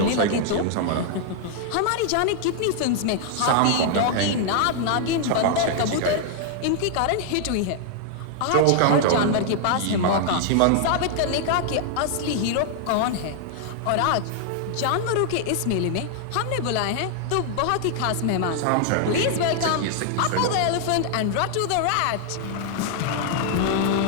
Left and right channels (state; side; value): different; both; correlation 0.00